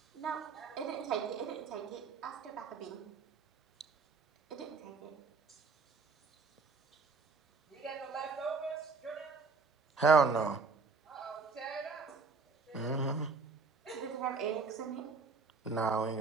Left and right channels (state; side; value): quieter; left; 4.5 dB